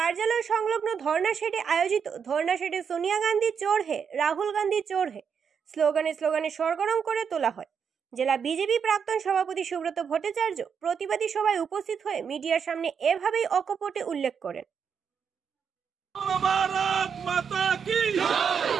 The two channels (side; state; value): left; quieter; 6.9 dB